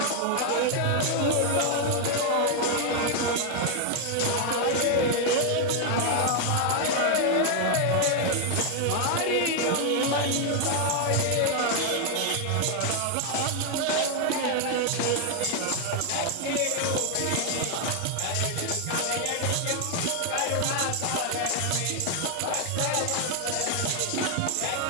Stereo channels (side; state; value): both; different; correlation 0.00